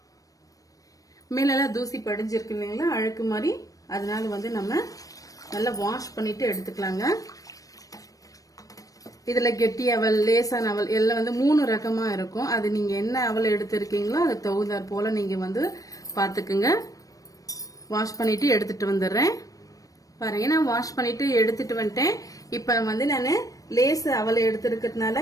மேலெல்லாம் தூசி படிஞ்சிருக்கு இல்லைங்களா, அழுக்கு மாதிரி. அதனால நம்ம நல்லா வாஷ் பண்ணிட்டு எடுத்துக்கலாங்க. இதுல கெட்டி அவல், லேசான அவல் எல்லாம் 3 ரகமா இருக்கும். அது நீங்க என்ன அவல் எடுத்திருக்கீங்களோ அது தகுந்தாற் போல நீங்க பாத்துக்குங்க. வாஷ் பண்ணிட்டு எடுத்துட்டு வந்துடுறேன். பாருங்க, நான் வாஷ் பண்ணிட்டு எடுத்துட்டு வந்துட்டேன். இப்ப நான் லேஸ் அவலை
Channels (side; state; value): right; late; 0.17 ms